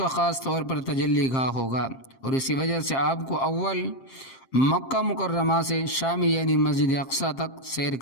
خاص طور پر تجلی گاہ ہوگا، اور اسی وجہ سے آپ کو اول مکہ مکرمہ سے شام یعنی مسجد اقصی تک سیر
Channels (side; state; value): right; late; 7.5 ms